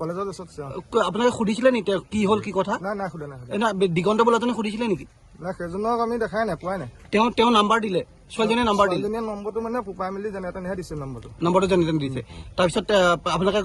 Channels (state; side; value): identical; both; correlation 1.00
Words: কলেজৰ ড্ৰেছত আছে। আপোনালোকে সুধিছিলে নেকি তেওঁ কি হ'ল কি কথা? নাই সোধা নাই। দিগন্ত বোলাজনে সুধিছিলে নেকি? নাই, সেইজনক আমি দেখাই নাই, পোৱাই নাই। তেওঁ নাম্বাৰ দিলে, ছোৱালীজনীয়ে নাম্বাৰ দিলে। ছোৱালীজনীয়ে নম্বৰটো মানে ফুপাই মেলি যেনে তেনেহে দিছে নম্বৰটো যেনে তেনে দিছে। তাৰপিছত আপোনালোকে